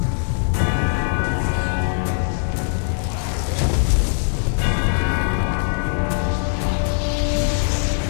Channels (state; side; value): silent; right; digital silence